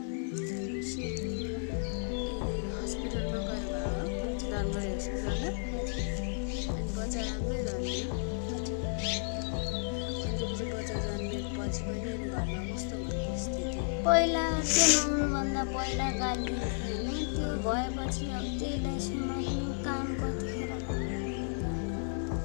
हस्पिटलमा गएर भयो धनगढी हस्पिटलमा अनि बच्चा राम्रै जन्मियो अनि त्यसपछि बच्चा जन्मिएपछि पनि घरमा कस्तो भयो स्थिति पहिला त्यो नहुनुभन्दा पहिला गाली होइन त्यो भएपछि अब त्यहीलाई समात्नु काम कतिखेर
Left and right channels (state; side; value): silent; right; digital silence